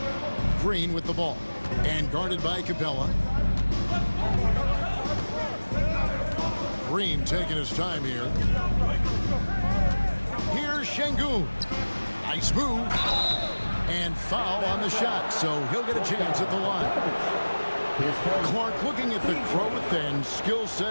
Green with the ball. And guarded by Capella. Green taking his time here. Here's Şengün. Nice move. And foul on the shot, so he'll get a chance at the line. Clark, looking at the growth and skill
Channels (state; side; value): inverted; both; correlation -1.00